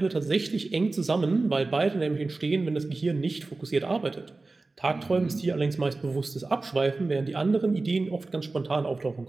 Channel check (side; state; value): left; quieter; 3.4 dB